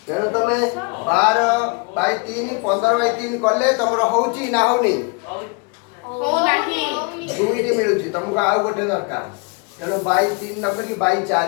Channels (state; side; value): quieter; right; 31.9 dB